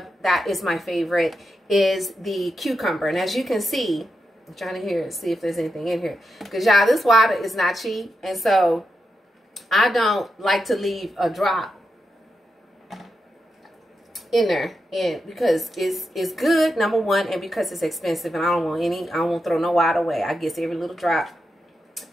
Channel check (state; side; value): normal; both; correlation 0.87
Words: that is my favorite, is the cucumber. And as you can see, I'm trying to see if there's anything in here. Because y'all, this water is not cheap. And so I don't like to leave a drop in there, and because it's good, number one, and because it's expensive, and I don't want to throw no water away. I get every little drop